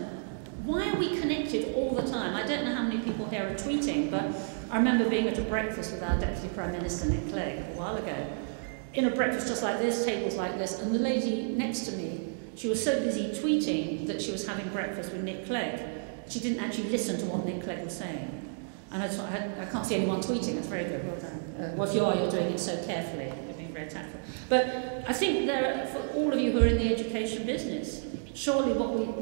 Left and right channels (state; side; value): silent; left; digital silence